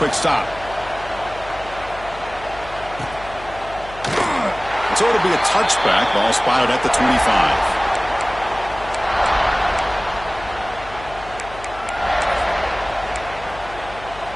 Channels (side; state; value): left; noise; hum, 16 dB below the sound